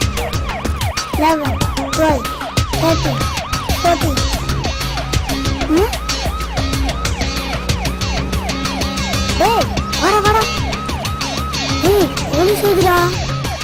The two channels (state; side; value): identical; both; correlation 1.00